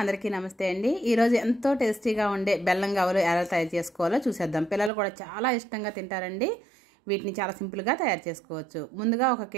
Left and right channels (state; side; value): drops out; left; at 4.9 s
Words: అందరికీ నమస్తే అండి. ఈరోజు ఎంతో టేస్టీగా ఉండే బెల్లం గవ్వలు ఎలా తయారు చేసుకోవాలో చూసేద్దాం. పిల్లలు కూడా చాలా ఇష్టంగా తింటారండి. వీటిని చాలా సింపుల్గా తయారు చేసుకోవచ్చు. ముందుగా 1